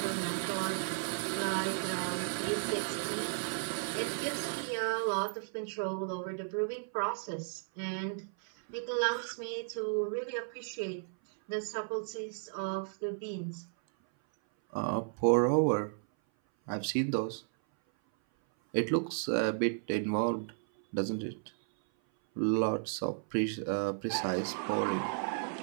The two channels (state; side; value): silent; left; 55 dB below the other